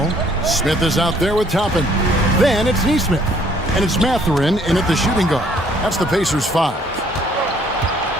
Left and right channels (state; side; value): normal; both; correlation 0.62